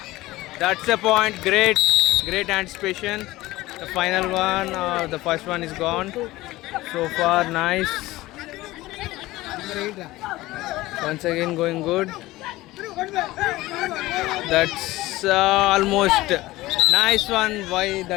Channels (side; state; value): right; quieter; 18.2 dB